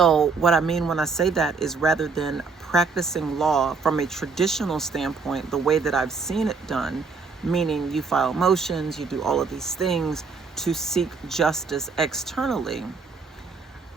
what I mean when I say that is, rather than practicing law from a traditional standpoint, the way that I've seen it done, meaning you file motions, you do all of these things to seek justice externally,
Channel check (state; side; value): quieter; left; 4.7 dB